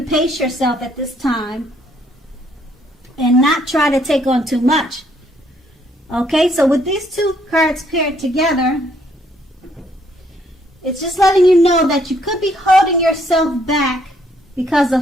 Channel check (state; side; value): normal; both; correlation 0.68